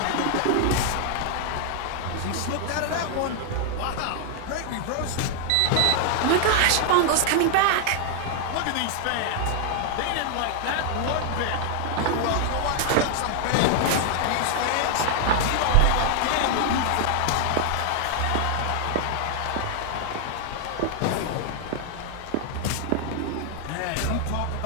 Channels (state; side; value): different; both; correlation 0.00